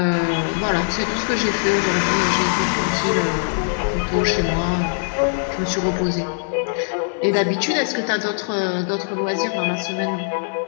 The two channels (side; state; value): right; silent; 62 dB below the other